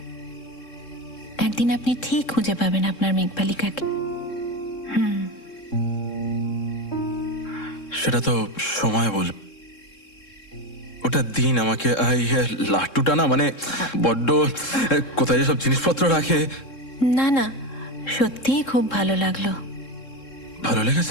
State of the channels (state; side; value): late; right; 3.7 ms